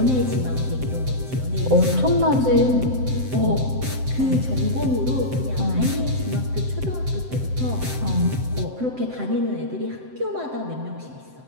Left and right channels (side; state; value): left; late; 7.8 ms